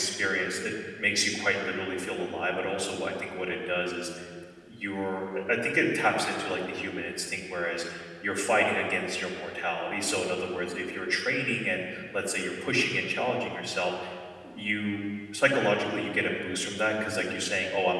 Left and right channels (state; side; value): identical; both; correlation 1.00